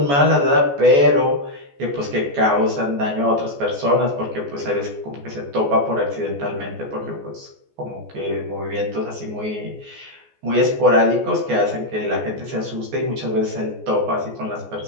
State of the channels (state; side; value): late; left; 14 ms